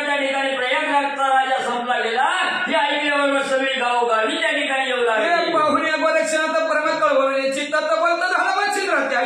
त्या ठिकाणी प्रयागराजचा राजा संपला गेला हे ऐकल्यावर सगळी गावोगावी त्या ठिकाणी येऊ लागली. पाहुणे गोरक्षनाथ परम कळवळणे चित्तात बंद झाला मच्छिंद्राच्या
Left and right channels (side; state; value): both; identical; correlation 1.00